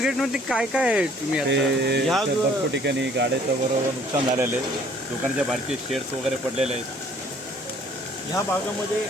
काय काय आहे तुम्ही आता? ते भरपूर ठिकाणी गाड्याचं बरोबर नुकसान झालेलं आहे. दुकानाच्या बाहेरचे शेड्स वगैरे पडलेले आहेत. ह्या भागामध्ये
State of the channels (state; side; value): normal; both; correlation 0.58